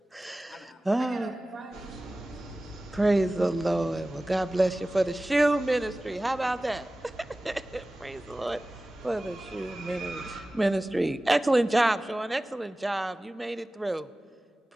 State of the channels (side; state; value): both; normal; correlation 0.97